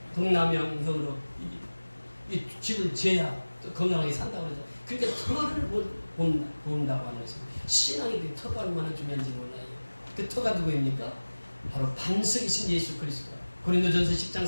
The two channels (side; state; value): both; inverted; correlation -1.00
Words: 동남양형으로 이 집을 지어야 또 건강하게 산다고 그러죠. 그러니까 터를 본다고 하는 것입니다. 신앙이 터가 얼마나 중요한지 몰라요. 그 터가 누구입니까? 바로 반석이신 예수 그리스도. 고린도전서